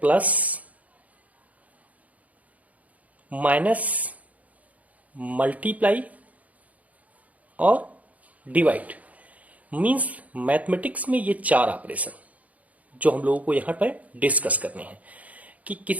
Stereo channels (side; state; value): left; late; 0.071 ms